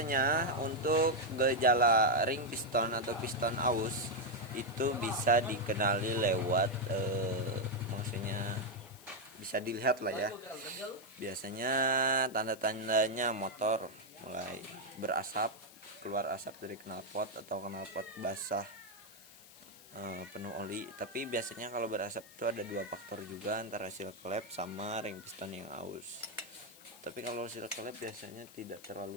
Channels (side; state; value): left; noise; hiss, 20 dB below the sound